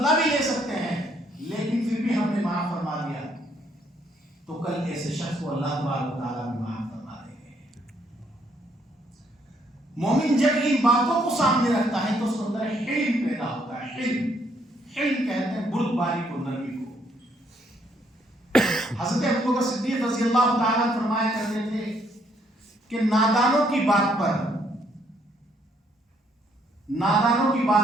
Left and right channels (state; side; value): normal; both; correlation 0.69